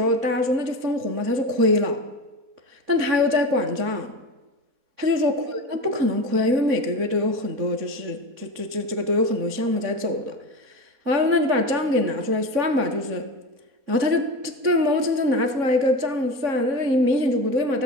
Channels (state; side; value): late; left; 3.6 ms